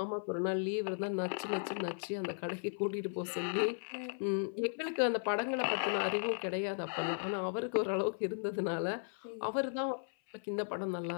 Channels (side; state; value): right; silent; 54 dB below the other